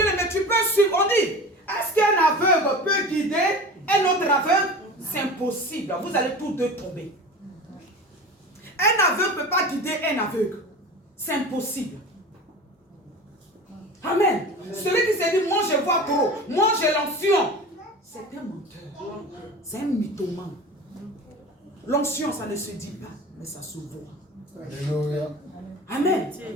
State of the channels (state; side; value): normal; both; correlation 0.34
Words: tu peux suivre. On dit, est-ce qu'un aveugle peut guider un autre aveugle? C'est impossible. Vous allez tous deux tomber. Un aveugle ne peut pas guider un aveugle. C'est impossible. Amen. Celui qui s'est dit, moi je vois trop, moi j'ai l'onction. C'est un menteur. C'est un mythomane. L'onction, ça ne se dit pas, mais ça se voit. Amen.